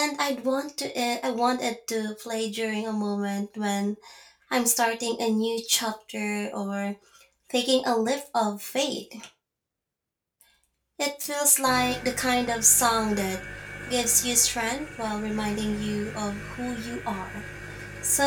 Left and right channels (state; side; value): identical; both; correlation 1.00